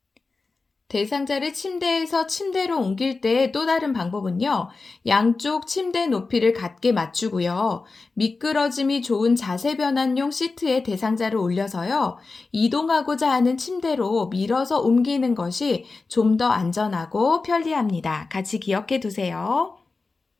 대상자를 침대에서 침대로 옮길 때 또 다른 방법은요. 양쪽 침대 높이를 같게 맞추고요. 미끄러짐이 좋은 자세 변환용 시트에 대상자를 올려서요. 이동하고자 하는 침대로 밀어서 옮기는 것이 좀 더 안전하고 편리합니다. 같이 기억해 두세요.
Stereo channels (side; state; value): right; quieter; 3.9 dB